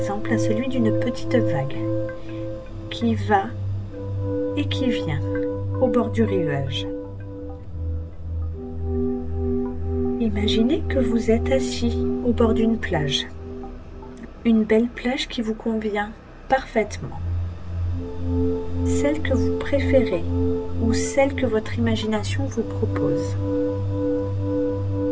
à celui d'une petite vague qui va et qui vient au bord du rivage. Imaginez que vous êtes assis au bord d'une plage, une belle plage qui vous convient parfaitement, celle que vous préférez ou celle que votre imagination vous propose.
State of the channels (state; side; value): identical; both; correlation 1.00